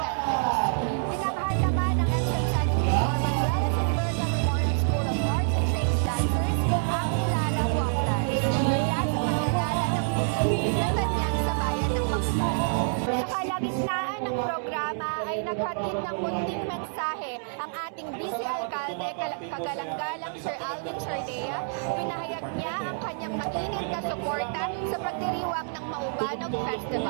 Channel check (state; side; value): silent; left; 58 dB below the other